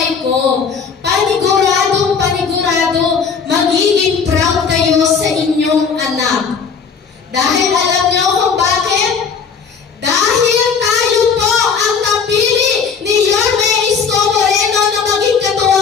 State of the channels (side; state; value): right; quieter; 6.0 dB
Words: ko, panigurado, magiging proud kayo sa inyong anak. Dahil alam niyo kung bakit? Dahil tayo po ang napili ni Yorme Isko Moreno na maging